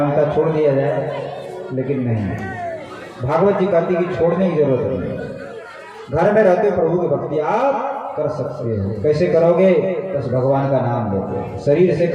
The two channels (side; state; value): both; identical; correlation 1.00